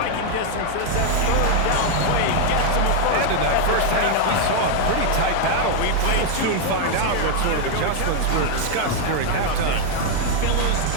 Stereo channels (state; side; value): different; both; correlation 0.00